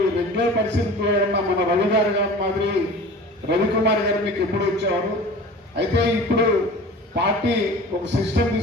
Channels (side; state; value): both; normal; correlation 0.39